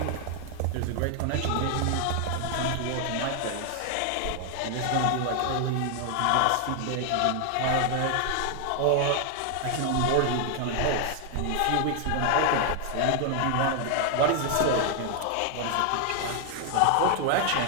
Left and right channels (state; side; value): different; both; correlation 0.00